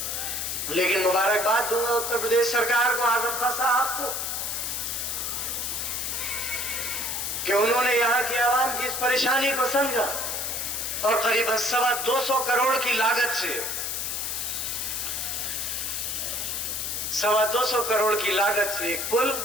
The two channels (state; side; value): noise; left; hiss, 2 dB below the sound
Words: लेकिन मुबारकबाद दूंगा उत्तर प्रदेश सरकार को, आजम खान साहब को, कि उन्होंने यहाँ की आवाम की इस परेशानी को समझा और करीबन 225 करोड़ की लागत से 225 करोड़ की लागत से एक पुल